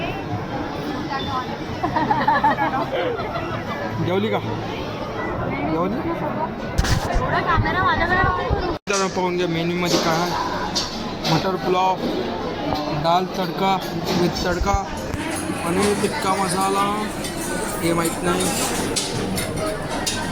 जेवली का? जेवली. तर पाहून घ्या मेन्यूमध्ये काय आहे. मटर पुलाव, दाल तडका विथ तडका, पनीर टिक्का मसाला, हे माहीत नाही.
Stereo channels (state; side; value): identical; both; correlation 1.00